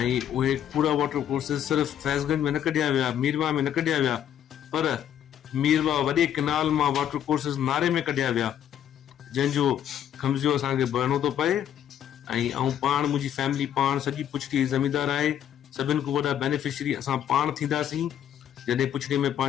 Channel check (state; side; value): quieter; right; 10.1 dB